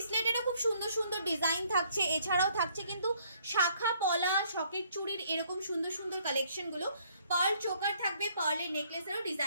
খুব সুন্দর সুন্দর ডিজাইন থাকছে। এছাড়াও থাকছে কিন্তু শাখা পলা সকেট চুড়ির এরকম সুন্দর সুন্দর কালেকশনগুলো। পার্ল চোকার থাকবে, পার্লের নেকলেসেরও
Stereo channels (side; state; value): both; inverted; correlation -0.65